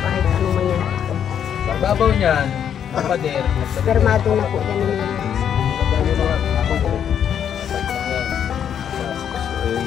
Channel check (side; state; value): right; quieter; 8.8 dB